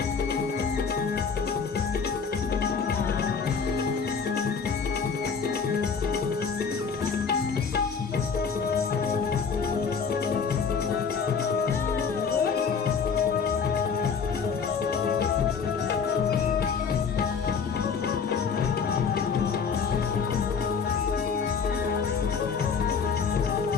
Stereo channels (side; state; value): right; quieter; 5.9 dB